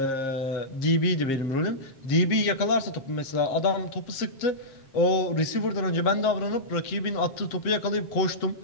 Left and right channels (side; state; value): right; late; 7.5 ms